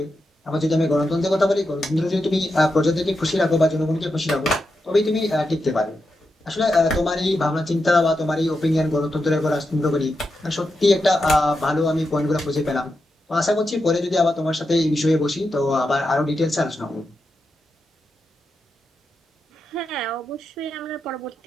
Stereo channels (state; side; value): normal; both; correlation 0.87